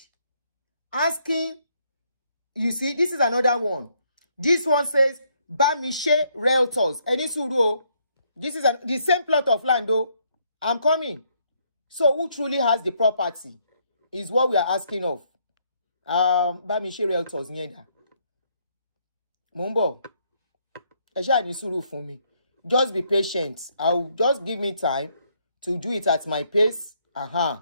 asking. You see, this is another one. This one says, Bamishe Realtors. Eni suru. This is the same plot of land, though. I'm coming. So, who truly has the property is what we are asking of. Bamishe Realtors. Nyenda. Mumbo. Esha ni suru for me. Just be patient. I'll just give me time to do it at my pace.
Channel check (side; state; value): both; inverted; correlation -0.71